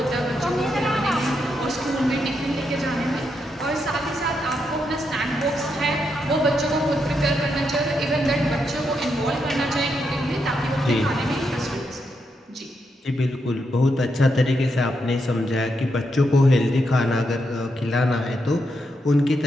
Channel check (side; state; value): both; normal; correlation 0.82